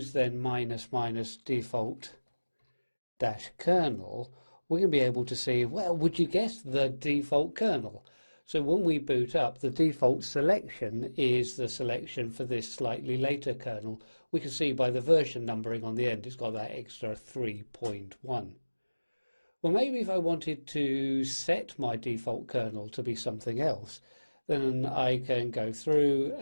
then --default -kernel, we're going to be able to see, well, would you guess the default kernel? So when we boot up, the default selection is the selection for this slightly later kernel. We can see by the version numbering on the end, it's got that extra 3.1. Well, maybe if I wanted to set my default kernel to be something else, then I can go through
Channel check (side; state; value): both; inverted; correlation -1.00